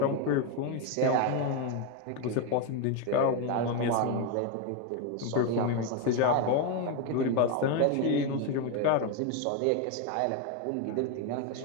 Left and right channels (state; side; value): different; both; correlation 0.02